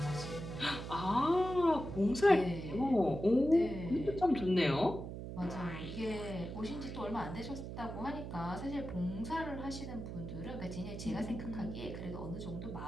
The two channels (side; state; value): right; noise; hum, 7 dB below the sound